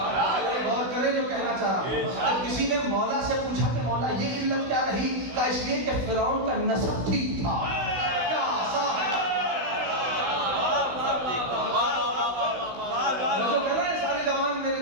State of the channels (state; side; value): late; left; 16 ms